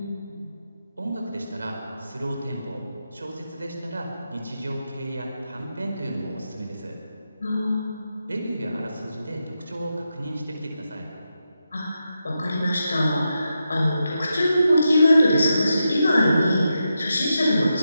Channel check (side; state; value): both; inverted; correlation -0.87